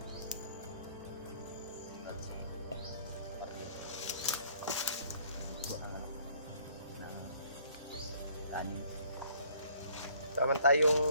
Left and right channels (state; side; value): inverted; both; correlation -0.59